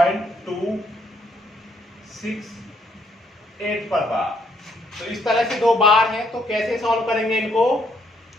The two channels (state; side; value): normal; both; correlation 0.71